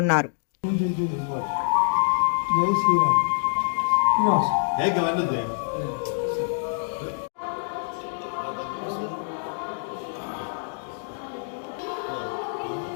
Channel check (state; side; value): silent; right; digital silence